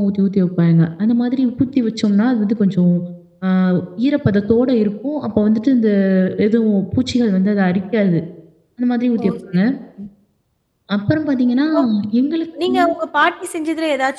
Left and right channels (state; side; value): identical; both; correlation 1.00